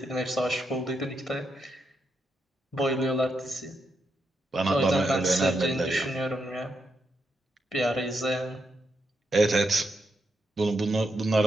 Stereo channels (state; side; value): normal; both; correlation 0.82